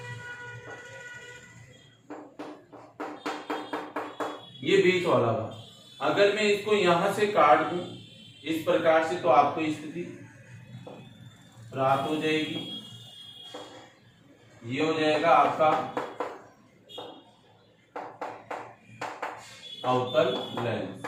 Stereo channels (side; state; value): both; identical; correlation 1.00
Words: ये बीच वाला भाग, अगर मैं इसको यहां से काट दूं इस प्रकार से, तो आपको स्थिति प्राप्त हो जाएगी। ये हो जाएगा आपका अवतल लेंस।